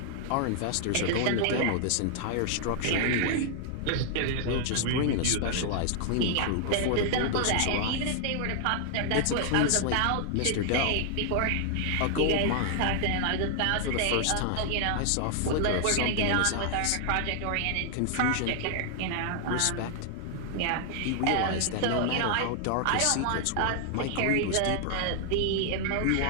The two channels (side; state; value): both; different; correlation 0.00